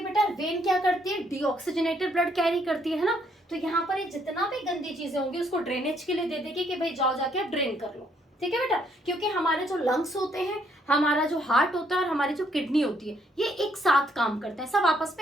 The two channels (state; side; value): normal; both; correlation 0.70